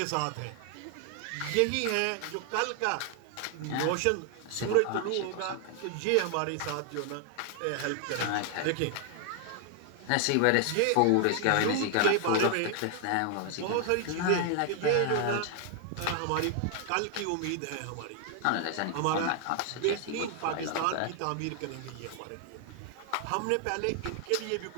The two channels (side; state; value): both; different; correlation 0.00